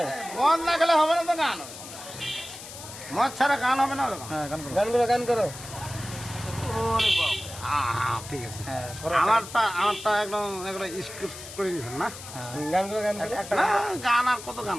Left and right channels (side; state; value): left; noise; hiss, 13 dB below the sound